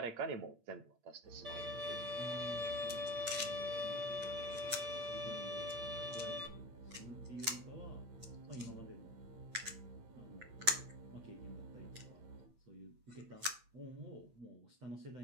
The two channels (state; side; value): late; left; 8.7 ms